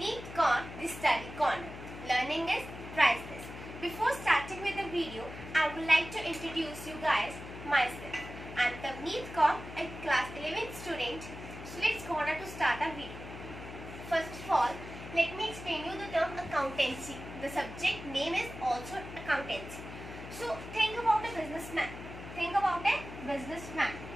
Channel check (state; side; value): noise; left; hum, 12 dB below the sound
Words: Kaur, the Study Corner. Learning is priceless. Before starting with the video, I would like to introduce you guys myself. I am Tavneet Kaur, a class 11th student. So let's go on to start our video. First of all, let me explain you the term accountancy. The subject name is also accountancy. So think about a businessman. Think about a businessman.